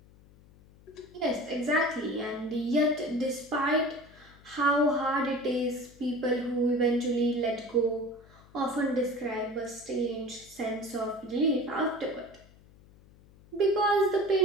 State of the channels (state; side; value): noise; left; hum, 25 dB below the sound